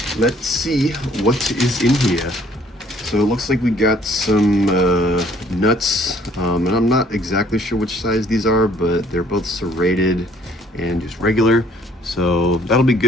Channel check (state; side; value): normal; both; correlation 0.60